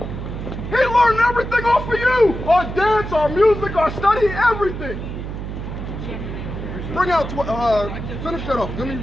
He learned everything off of you. Our dance, our music, our study, everything. Bring out, finish that off. Give me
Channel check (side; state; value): right; noise; hum, 7 dB below the sound